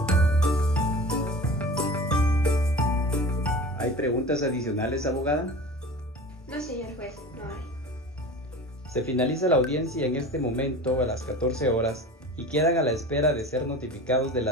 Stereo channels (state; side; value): normal; both; correlation 0.36